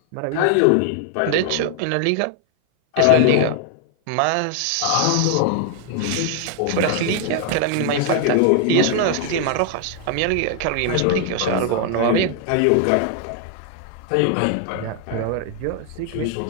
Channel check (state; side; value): different; both; correlation 0.00